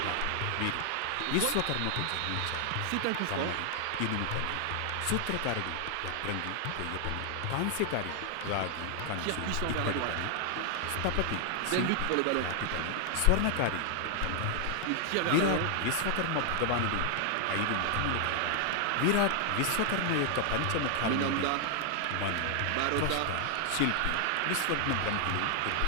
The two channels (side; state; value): both; different; correlation 0.00